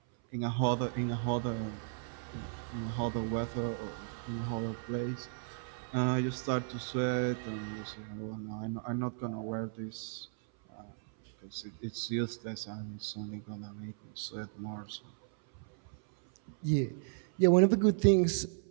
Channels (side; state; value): left; silent; 55 dB below the other